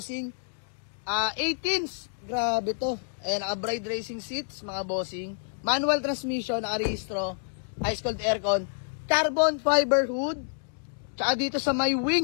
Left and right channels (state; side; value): silent; right; digital silence